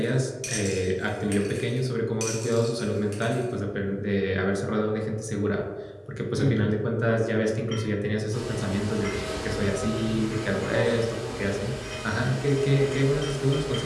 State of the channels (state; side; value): identical; both; correlation 1.00